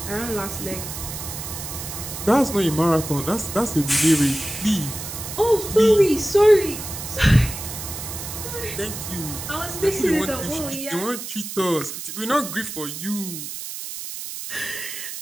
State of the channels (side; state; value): right; noise; hiss, 8 dB below the sound